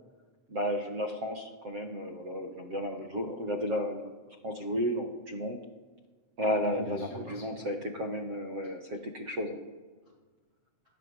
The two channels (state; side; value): late; left; 7.6 ms